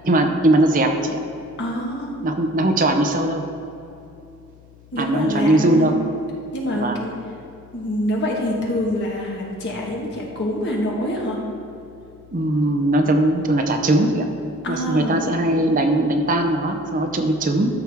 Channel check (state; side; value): noise; left; hum, 25 dB below the sound